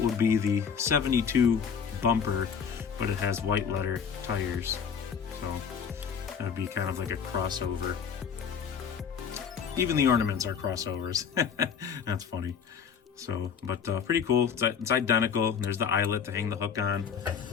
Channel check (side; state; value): right; quieter; 6.9 dB